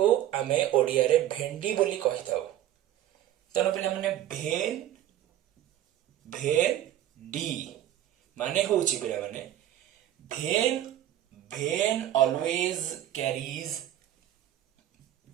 आमे ओडिया रे भेंडी बोली कहि थाउ। तेणु पिला माने भेन भेन डी माने होउची पिला माने भेन भेन ऑलवेज कैरीज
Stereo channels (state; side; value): quieter; left; 12.2 dB